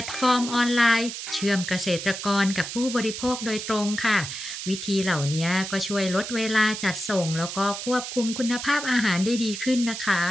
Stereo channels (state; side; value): noise; right; hiss, 7 dB below the sound